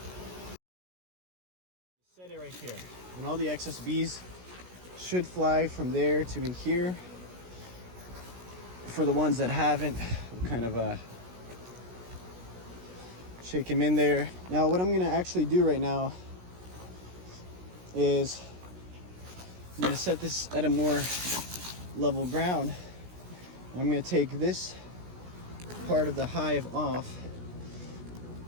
Set it right here. And all the excess bees should fly from there to in here. For the ones that haven't, we'll kind of shake them in there. Now what I'm gonna actually do right now is I'm gonna set this at a more level ground. I'm gonna take this part of the hive off,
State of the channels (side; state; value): left; late; 16 ms